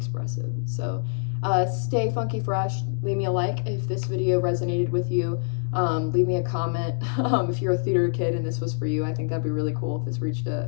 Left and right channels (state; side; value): silent; right; digital silence